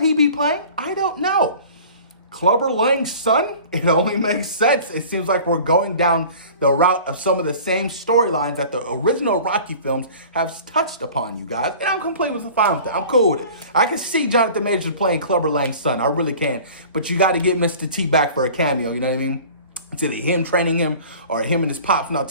be playing? I don't know. Clubber Lang's son? It only makes sense. It seems like we're going down the route of some of the same storylines that the original Rocky films have touched upon, you guys. And I'm completely fine with it. I'm cool with it. I can see Jonathan Majors playing Clubber Lang's son. I really can. But you got to get Mr. T back for a cameo, you know what I mean? It's either him training him or him and his pops not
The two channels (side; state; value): both; inverted; correlation -0.43